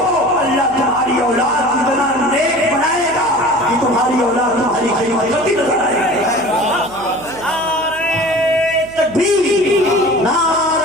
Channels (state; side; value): noise; right; hum, 20 dB below the sound